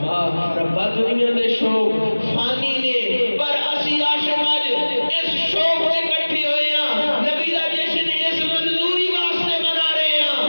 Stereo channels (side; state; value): both; inverted; correlation -1.00